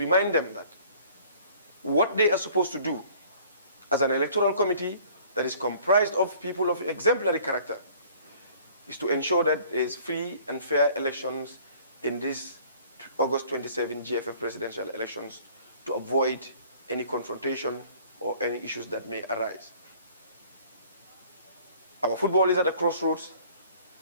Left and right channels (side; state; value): both; inverted; correlation -0.53